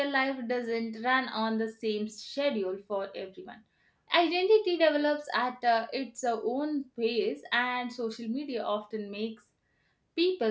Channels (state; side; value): identical; both; correlation 1.00